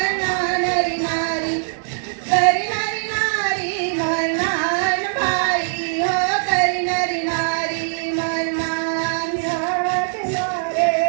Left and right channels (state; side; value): silent; left; digital silence